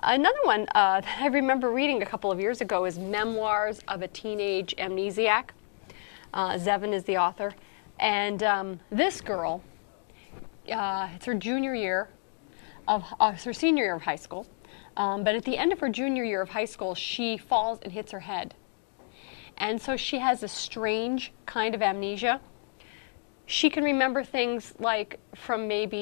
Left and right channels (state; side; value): silent; right; 58 dB below the other